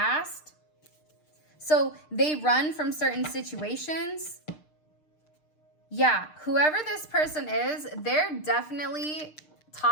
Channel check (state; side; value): late; right; 6.6 ms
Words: So they run from certain situations. Yeah, whoever this person is, they're definitely